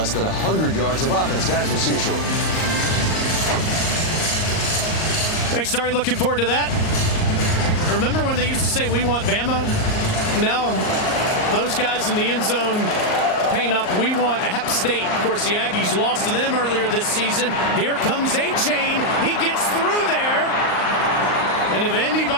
than 100 yards of offense. Guys, we'll see you shortly. Thanks, Starry. Looking forward to that. Remember when they used to say, we want Bama? Now, those guys in the end zone paint up, we want App State. Of course, the Aggies lost to them earlier this season. Here comes A-Chain. He gets through there. And if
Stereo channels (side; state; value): right; late; 38 ms